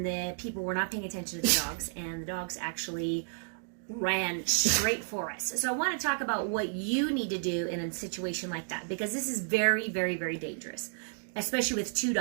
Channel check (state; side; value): silent; left; digital silence